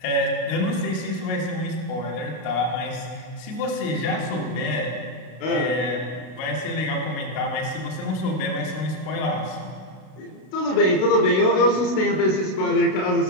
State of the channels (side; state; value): right; late; 32 ms